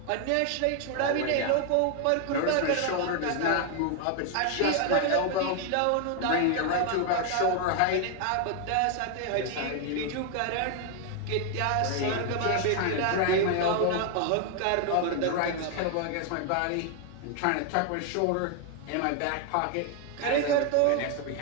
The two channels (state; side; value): different; both; correlation 0.01